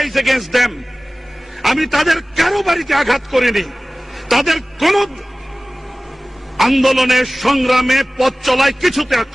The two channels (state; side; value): normal; both; correlation 0.97